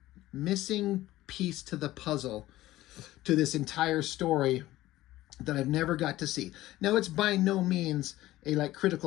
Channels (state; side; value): quieter; right; 16.1 dB